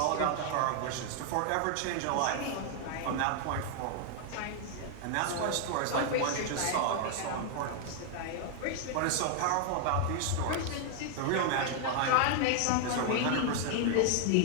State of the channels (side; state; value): both; different; correlation 0.00